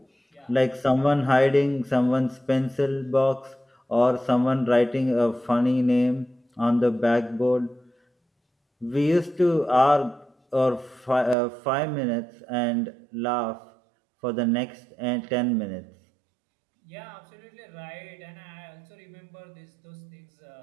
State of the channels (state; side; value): drops out; left; at 11.4 s